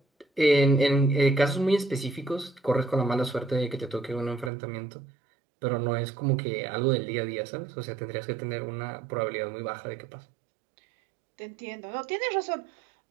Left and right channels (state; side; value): drops out; left; at 4.5 s